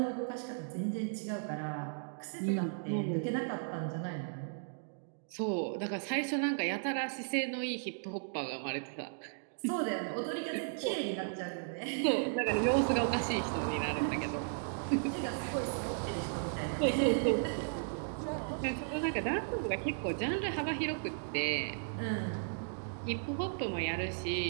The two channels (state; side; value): silent; left; digital silence